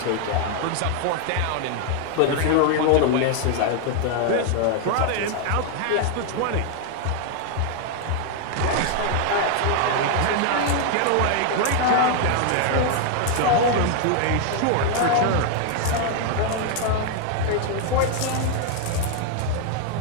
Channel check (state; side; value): different; both; correlation 0.00